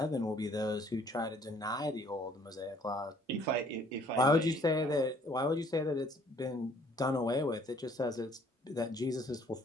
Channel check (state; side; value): normal; both; correlation 0.59